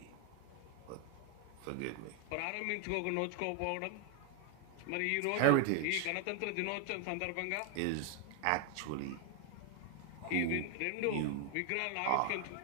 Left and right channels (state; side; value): different; both; correlation 0.00